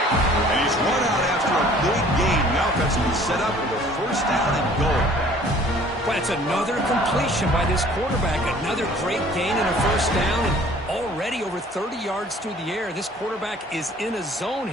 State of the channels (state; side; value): normal; both; correlation 0.53